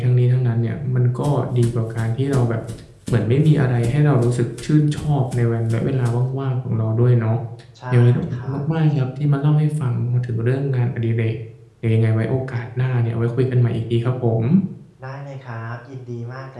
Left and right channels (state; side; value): identical; both; correlation 1.00